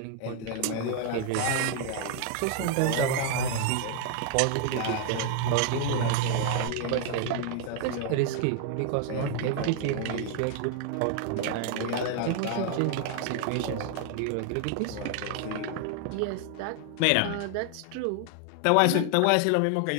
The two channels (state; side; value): different; both; correlation 0.00